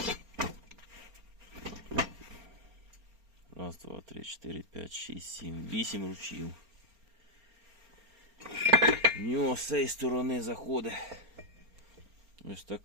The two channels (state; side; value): late; left; 4.3 ms